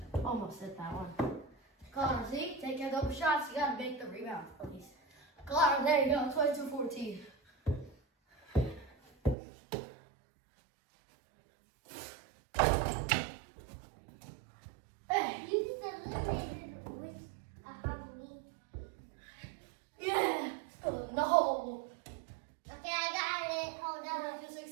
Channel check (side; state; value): left; drops out; at 9.3 s